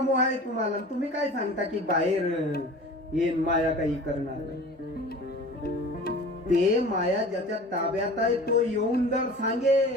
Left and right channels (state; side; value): normal; both; correlation 0.40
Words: मोह आहे तुम्हाला. तुम्ही काय सांगता की बाहेर येईन माया काही करणार नाही. ते माया ज्याच्या ताब्यात आहे तो येऊन जर